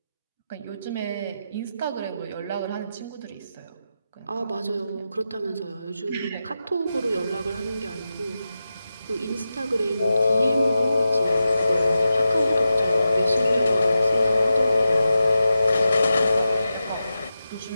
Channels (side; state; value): both; inverted; correlation -0.90